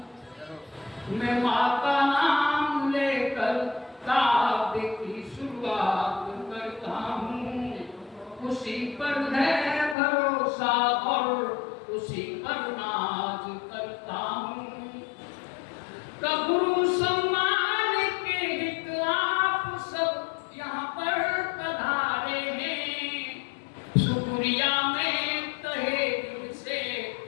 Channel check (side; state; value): right; drops out; at 10.0 s